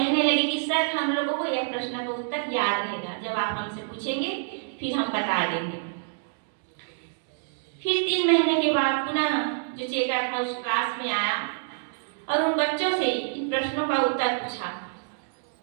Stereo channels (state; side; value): silent; left; digital silence